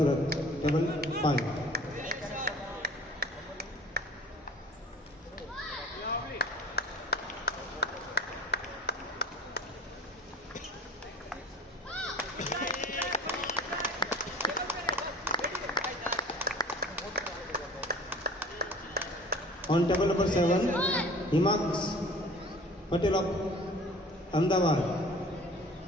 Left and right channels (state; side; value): normal; both; correlation 0.45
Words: Table 5. On table number 7, Himax Patel of Ahmedabad,